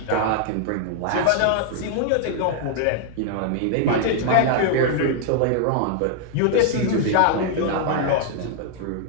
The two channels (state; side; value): different; both; correlation -0.01